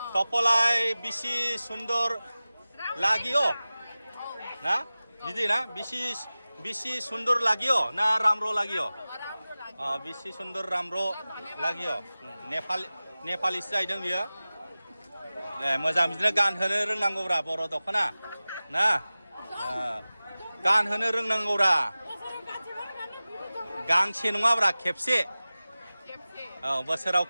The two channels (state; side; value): inverted; both; correlation -0.97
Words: टपलाय बिसि सुन्दर लागियो ना बिदि ना बिसि सुन्दर लागियो ना राम्रो लागियो बिसि सुन्दर राम्रो लागियो नेपालिसो जाहैदों बियो मोजां बिदिनो गानहोनो रोंनांगौब्रा बर' दख'ना ना गानहोनो रोंनांगौब्रा गांसे नङाब्रा खेबसे बोसोराव